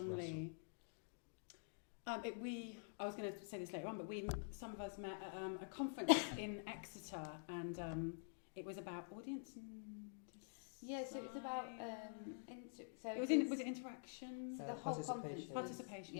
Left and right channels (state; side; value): silent; right; digital silence